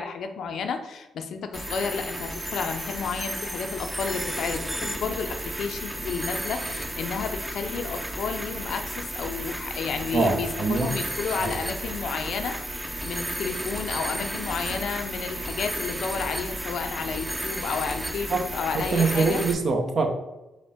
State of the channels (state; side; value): normal; both; correlation 0.78